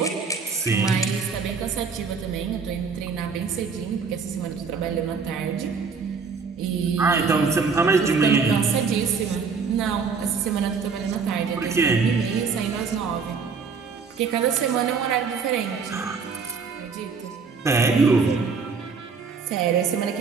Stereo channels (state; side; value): quieter; left; 5.2 dB